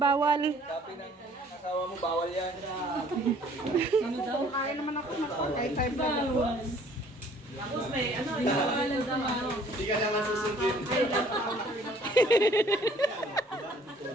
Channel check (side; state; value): both; normal; correlation 0.57